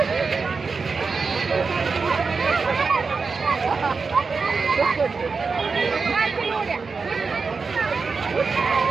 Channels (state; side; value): quieter; left; 4.7 dB